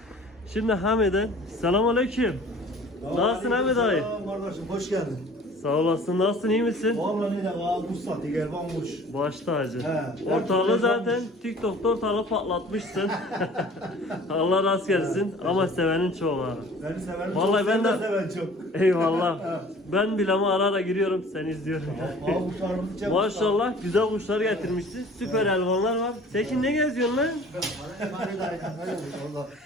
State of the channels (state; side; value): normal; both; correlation 0.48